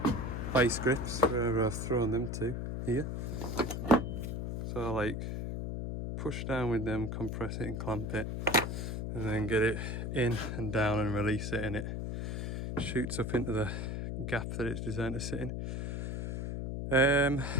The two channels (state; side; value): noise; left; hum, 3 dB below the sound